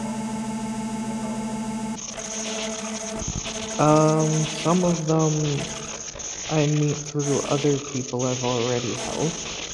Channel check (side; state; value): both; identical; correlation 1.00